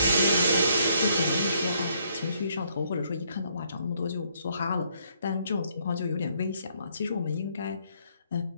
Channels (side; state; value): both; inverted; correlation -0.69